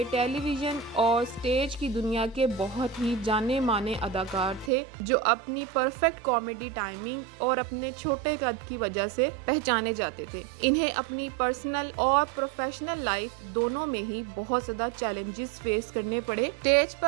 टेलीविजन और स्टेज की दुनिया के बहुत ही जाने माने अदाकार थे जो अपनी परफेक्ट कॉमेडी टाइमिंग और अपने छोटे कद की वजह से पहचाने जाते थे। इन्हें अपनी पर्सनल और प्रोफेशनल लाइफ दोनों में ही बहुत ज्यादा चैलेंजेस फेस करने पड़े। स्टेज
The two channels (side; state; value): left; drops out; at 4.7 s